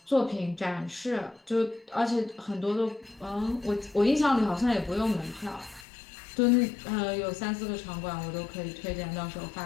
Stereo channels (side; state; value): right; drops out; at 5.9 s